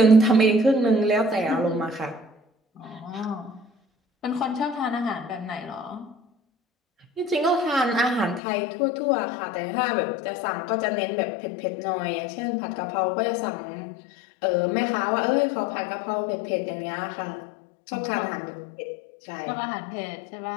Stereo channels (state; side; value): drops out; right; at 8.4 s